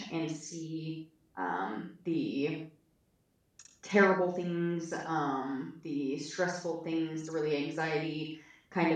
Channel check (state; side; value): identical; both; correlation 1.00